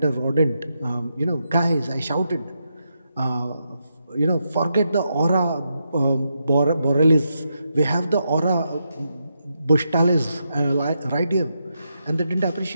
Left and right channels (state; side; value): inverted; both; correlation -0.84